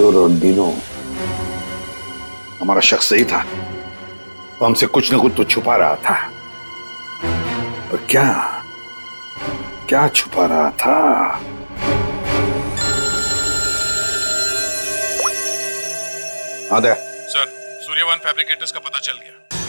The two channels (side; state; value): both; inverted; correlation -1.00